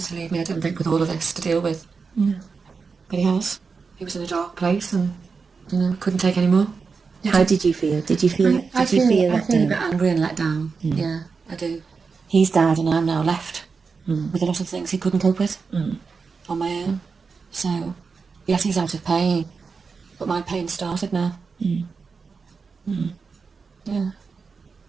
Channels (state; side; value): quieter; left; 5.0 dB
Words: to leave me, I don't think, with all of this to deal with. No. But he has. He was in a dark place and, you know, couldn't take any more. How did you feel? Did you feel I feel let a bit down? angry and let down. Yeah, I do. He's died and I'm now left with a lot of things he couldn't cope with on my own. So, yes, he's out of pain, but my pain started now. Yeah.